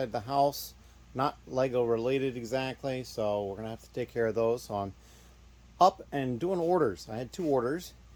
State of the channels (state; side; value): identical; both; correlation 1.00